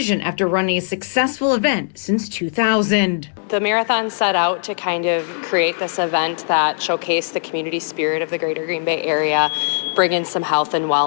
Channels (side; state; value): right; silent; digital silence